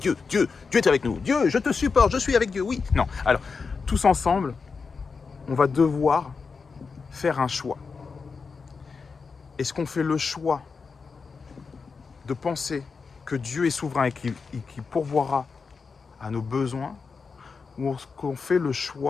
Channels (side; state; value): right; quieter; 5.0 dB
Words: est avec nous. Dieu, je te supporte, je suis avec Dieu, oui. Non, alors, tous ensemble, on va devoir faire un choix. Est-ce qu'on fait le choix de penser que Dieu est souverain et qu'il pourvoira à nos besoins, ou est-ce qu'on fait le